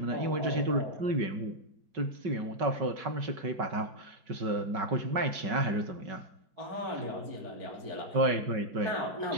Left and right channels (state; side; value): late; left; 5.3 ms